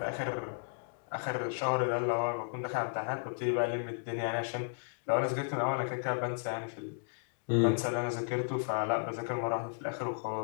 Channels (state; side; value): silent; right; digital silence